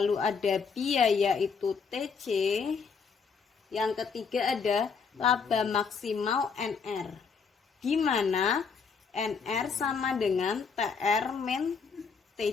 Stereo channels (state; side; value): quieter; right; 5.6 dB